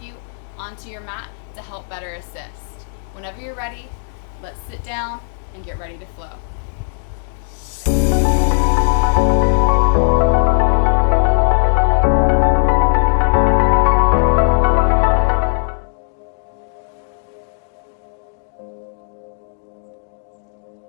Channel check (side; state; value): right; silent; digital silence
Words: you onto your mat to help better assist. Whenever you're ready, let's sit down and get ready to flow.